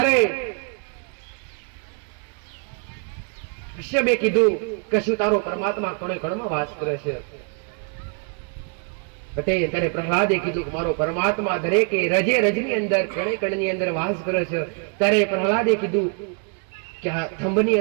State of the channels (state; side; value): quieter; left; 39.9 dB